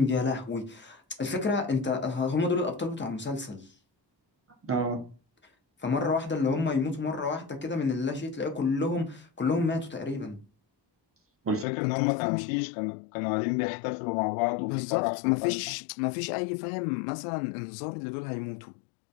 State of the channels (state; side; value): drops out; right; at 11.7 s